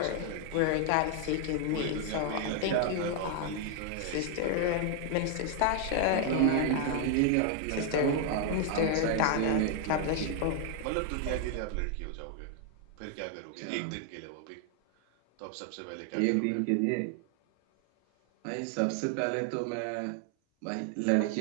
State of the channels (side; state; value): both; different; correlation 0.00